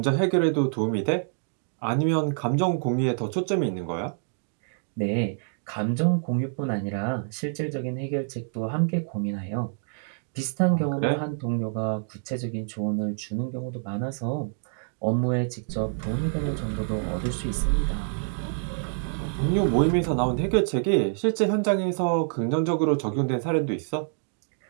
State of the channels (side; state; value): left; silent; digital silence